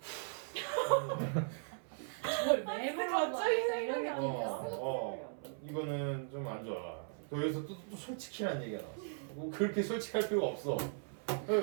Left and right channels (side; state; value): left; silent; 53 dB below the other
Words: 왜 갑자기 이런 생각이 느낌이었어. 이거는 좀 안 좋아. 여기서 또 솔직히란 얘기가 나왔어. 뭐 그렇게 솔직할 필요가 없어. 왜